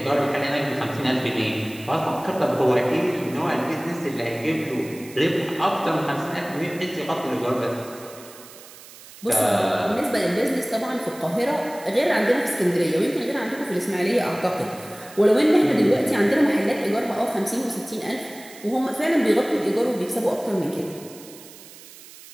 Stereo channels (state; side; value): noise; right; hiss, 19 dB below the sound